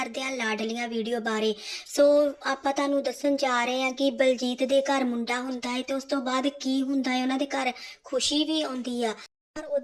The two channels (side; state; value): both; identical; correlation 1.00